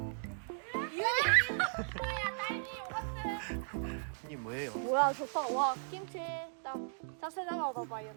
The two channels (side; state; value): left; silent; digital silence